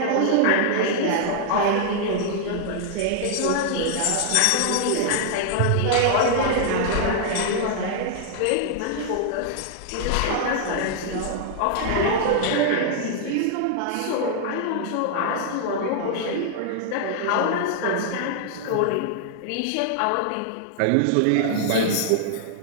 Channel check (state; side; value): different; both; correlation -0.01